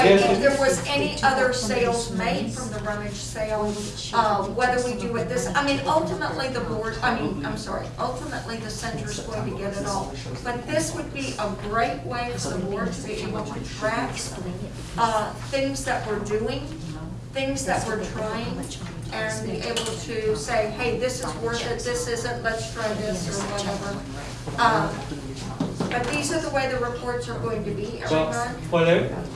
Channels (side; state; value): both; identical; correlation 1.00